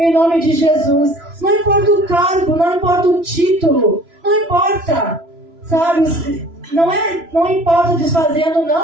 nome de Jesus. Não importa o cargo, não importa o título, não importa. Sabe? Não importa desfazendo,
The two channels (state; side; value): late; left; 3.0 ms